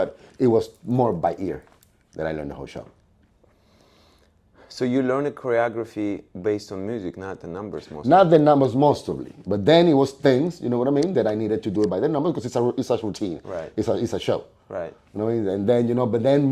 it was more by ear that I learned the whole show. So you learned a choreography based on music, not the numbers mostly. Not the numbers mostly, but then it was things, you know what I mean, that I needed to do it by the numbers because it's a routine. Right. It's a show. Right. You know, and then, you know, but then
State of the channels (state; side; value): identical; both; correlation 1.00